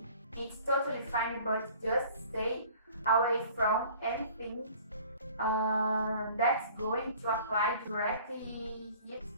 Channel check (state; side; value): inverted; both; correlation -0.49